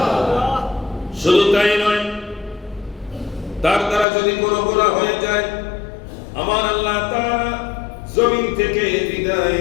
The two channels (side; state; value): right; drops out; at 4.0 s